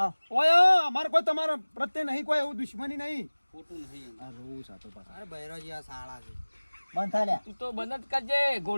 ઓય અમારે કોઈ તમારા પ્રત્યે નહીં કોઈ એવું દુશ્મની નહીં ખોટું નહીં આ રોવું સાતો પાછા અરે બૈરોજી આ શાળા છે બંધ થાય લ્યા. તું તો બંધ જ કરજે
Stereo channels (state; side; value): inverted; both; correlation -1.00